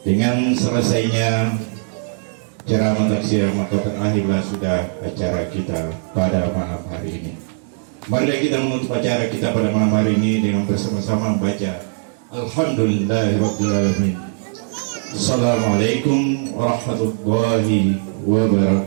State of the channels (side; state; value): left; silent; 66 dB below the other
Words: Dengan selesainya ceramah taksiah maka berakhirlah sudah acara kita pada malam hari ini. Mari kita menutup acara kita pada malam hari ini dengan bersama-sama membaca Alhamdulillahirrahmanirrahim. Assalamualaikum warahmatullahi